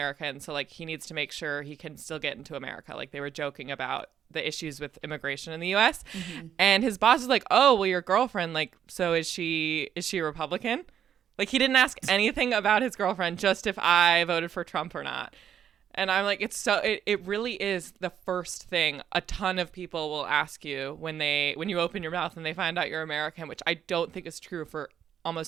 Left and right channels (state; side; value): quieter; left; 9.1 dB